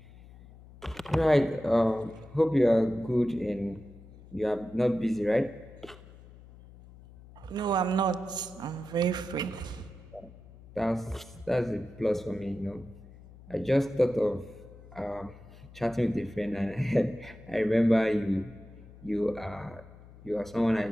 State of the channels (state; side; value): noise; left; hum, 20 dB below the sound